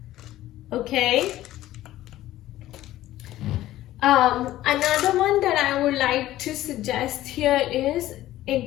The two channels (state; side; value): quieter; right; 14.7 dB